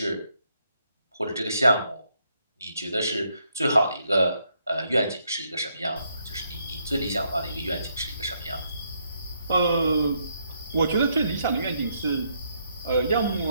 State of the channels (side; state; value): both; inverted; correlation -0.75